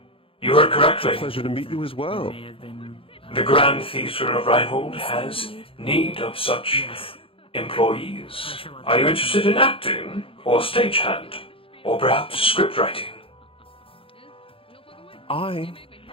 You heard correctly. It's a pleasure to meet you as well. The Grand Theatre of Reinhold has need of such employees. Are you interested in acting, or stagehand, or perhaps script writing? I,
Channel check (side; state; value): right; late; 0.26 ms